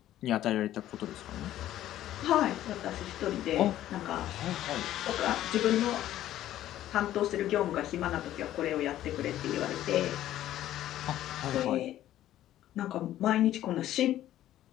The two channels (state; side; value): quieter; right; 13.0 dB